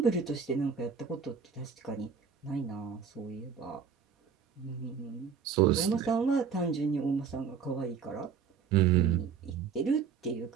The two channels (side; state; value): left; quieter; 6.7 dB